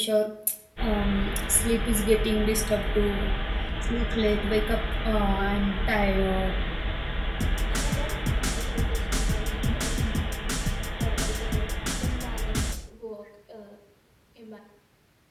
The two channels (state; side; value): identical; both; correlation 1.00